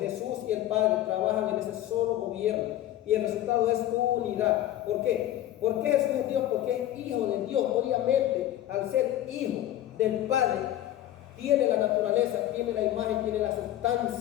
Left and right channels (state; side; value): quieter; right; 13.1 dB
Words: y el Padre trabajan en ese solo gobierno. Y el resultado es unidad. ¿Por qué? ¿Por qué Jesús es Dios? Porque es hijo de Dios. Obviamente, al ser hijo del Padre, tiene la naturaleza, tiene la imagen, tiene la